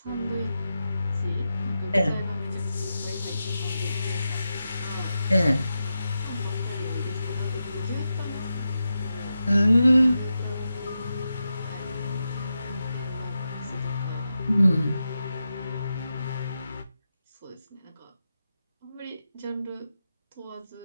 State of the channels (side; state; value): both; inverted; correlation -0.89